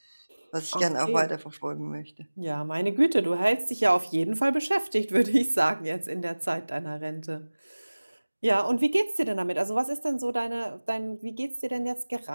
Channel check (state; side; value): inverted; both; correlation -1.00